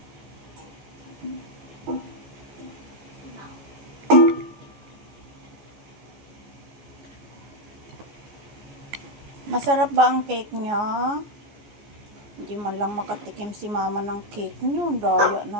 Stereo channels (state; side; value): late; left; 14 ms